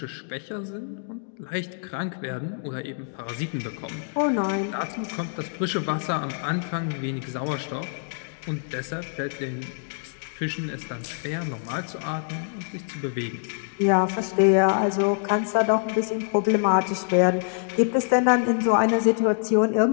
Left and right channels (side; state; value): right; silent; digital silence